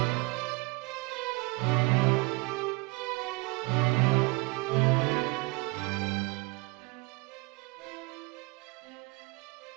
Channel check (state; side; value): quieter; left; 27.3 dB